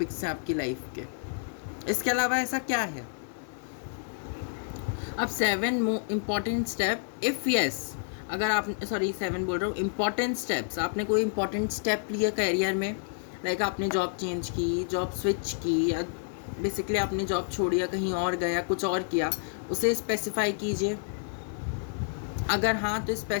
हैं आपकी लाइफ के। इसके अलावा ऐसा क्या है? अब 7 इम्पॉर्टेंट स्टेप, इफ़ यस, अगर आप 7 बोल रहा हूँ, इम्पॉर्टेंट स्टेप्स, आपने कोई इम्पॉर्टेंट स्टेप लिया कैरियर में, लाइक आपने जॉब चेंज की, जॉब स्विच की, या बेसिकली आपने जॉब छोड़ी या कहीं और गया, कुछ और किया, उसे स्पेसिफाई कीजिए। अगर हाँ तो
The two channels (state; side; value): silent; right; digital silence